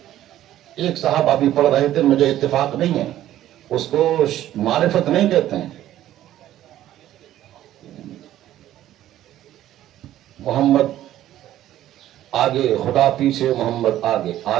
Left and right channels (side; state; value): left; quieter; 13.0 dB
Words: ایک صاحب ابھی پڑھ رہے تھے، مجھے اتفاق نہیں ہے، اس کو معرفت نہیں کہتے ہیں. محمد آگے، خدا پیچھے، محمد آگے،